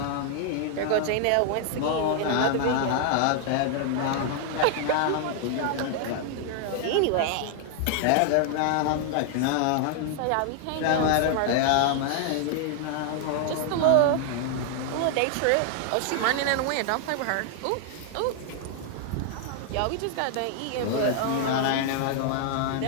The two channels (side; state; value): both; different; correlation 0.00